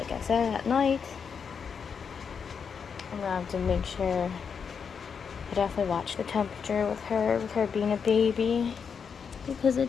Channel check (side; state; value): right; quieter; 6.4 dB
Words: I said, at night, I'm gonna have to make sure I definitely watch the temperature with her being a baby. Because